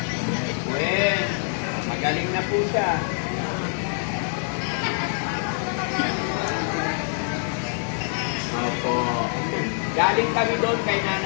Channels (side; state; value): right; silent; 55 dB below the other